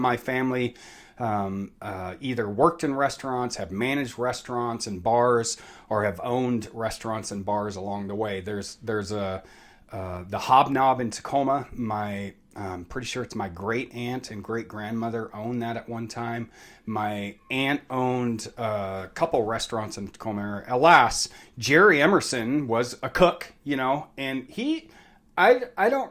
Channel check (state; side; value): identical; both; correlation 1.00